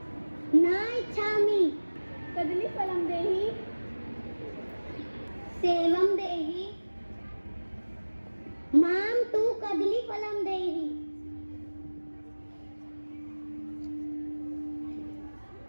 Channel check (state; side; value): inverted; both; correlation -1.00